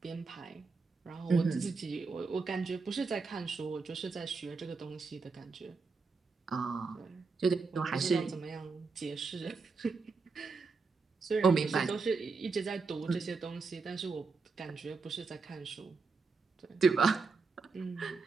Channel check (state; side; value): quieter; left; 4.4 dB